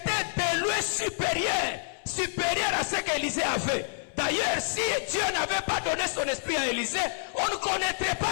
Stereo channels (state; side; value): silent; right; 59 dB below the other